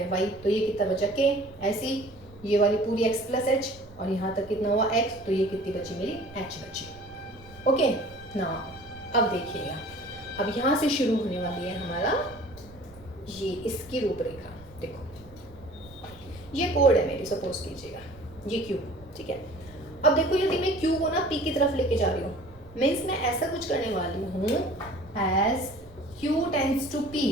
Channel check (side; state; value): right; noise; rumble, 22 dB below the sound